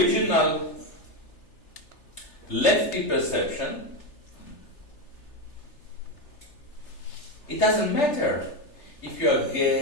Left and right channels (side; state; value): right; late; 3.3 ms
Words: lefty perception, it doesn't matter if you are